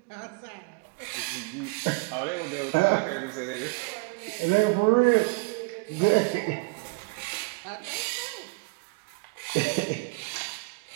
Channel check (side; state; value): left; quieter; 28.6 dB